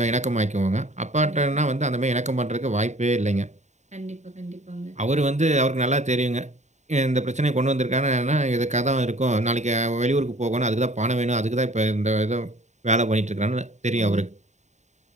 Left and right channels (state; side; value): late; left; 0.34 ms